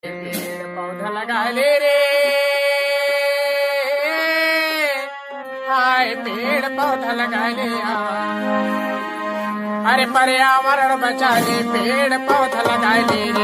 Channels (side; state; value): both; identical; correlation 1.00